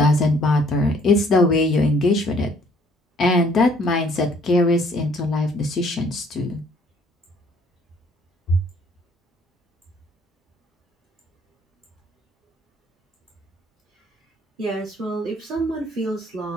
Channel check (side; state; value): both; normal; correlation 0.61